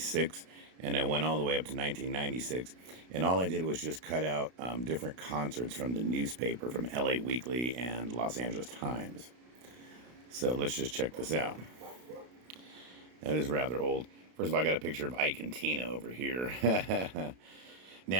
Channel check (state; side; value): late; left; 32 ms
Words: and I went all the way up to 1996. And all I did was just cut out different concerts from the newspaper, from LA Weekly and Los Angeles Times. So let's just check this out. That is rather old. First of all, I got a picture of Ike and Tina over here.